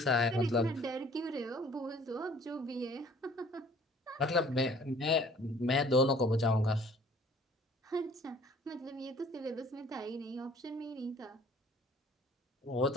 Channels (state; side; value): normal; both; correlation 0.54